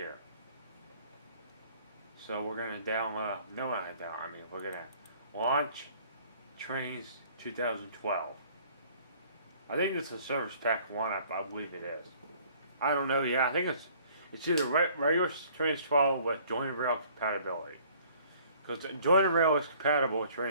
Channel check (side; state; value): both; inverted; correlation -0.56